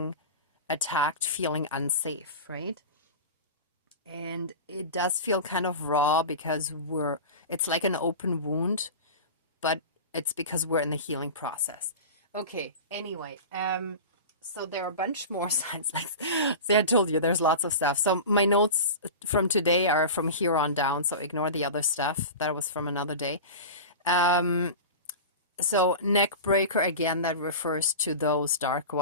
attacked, feeling unsafe, right? And it does feel kind of raw because it's like an open wound, but it's because we're in the healing process. Okay, anyway, so there are a bunch more signs. Like, see, I told you there's lots of stuff. So my notes from today are from here on down, so ignore the other stuff. That was from another day. So neck breaker, again, that refers to those dark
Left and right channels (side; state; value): both; inverted; correlation -0.30